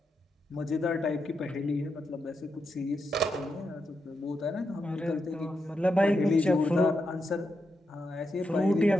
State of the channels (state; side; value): normal; both; correlation 0.85